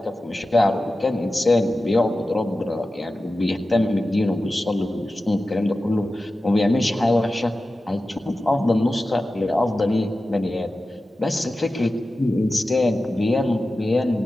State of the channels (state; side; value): normal; both; correlation 0.94